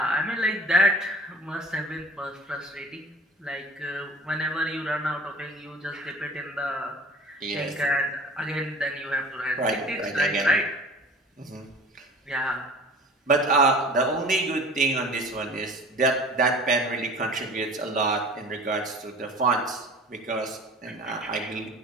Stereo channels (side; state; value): both; normal; correlation 0.43